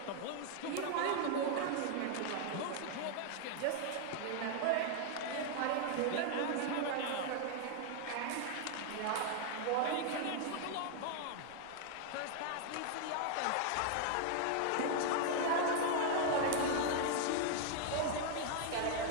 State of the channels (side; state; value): both; different; correlation 0.00